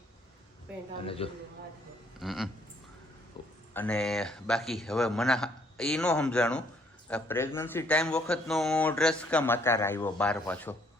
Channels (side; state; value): both; normal; correlation 0.65